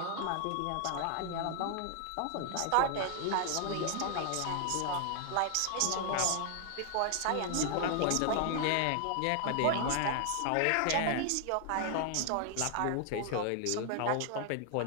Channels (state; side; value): different; both; correlation 0.00